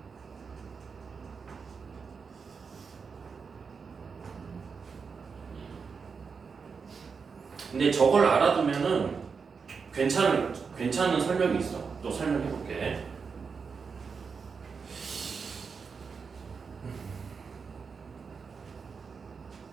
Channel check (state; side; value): quieter; left; 5.5 dB